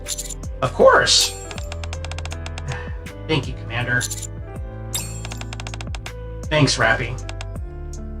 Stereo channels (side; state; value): both; identical; correlation 1.00